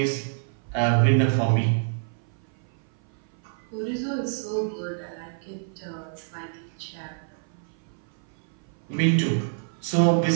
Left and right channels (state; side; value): silent; left; 56 dB below the other